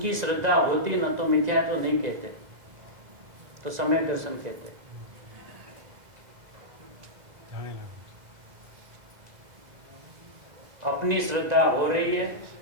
श्रद्धा होती न तो मिथ्या तो नहीं कहते, तो सम्यक दर्शन कहते। अपनी श्रद्धा हो रही है,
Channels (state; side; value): late; left; 2.0 ms